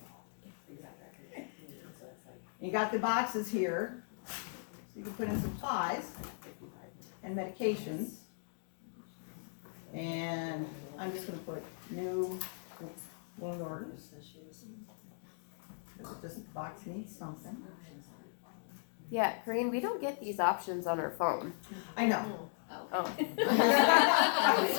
you got the boxes here, so you can put in supplies and medications. And I'm just gonna put new wound orders. This box needs something. Yeah, Corinne, we don't get these options on our phone. I know. Oh. I'm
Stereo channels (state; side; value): silent; right; digital silence